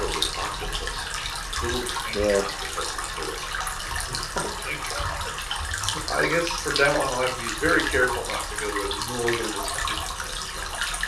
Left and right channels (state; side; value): identical; both; correlation 1.00